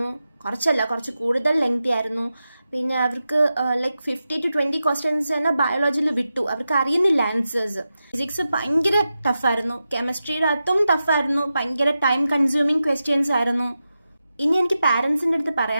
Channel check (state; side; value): inverted; both; correlation -0.91